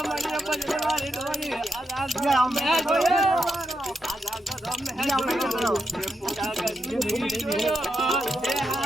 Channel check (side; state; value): both; normal; correlation 0.83